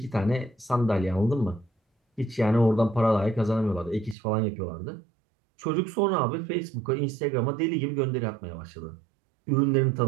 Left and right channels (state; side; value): drops out; left; at 4.2 s